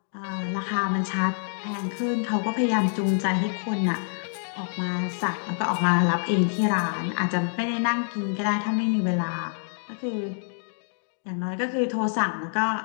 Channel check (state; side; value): silent; right; digital silence